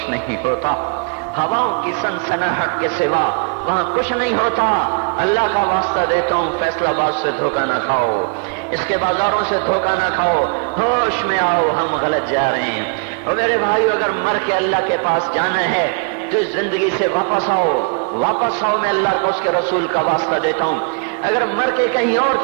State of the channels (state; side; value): quieter; left; 36.5 dB